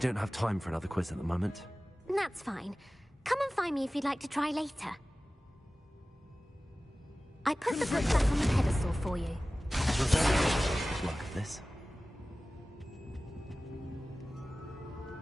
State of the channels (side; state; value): both; normal; correlation 0.97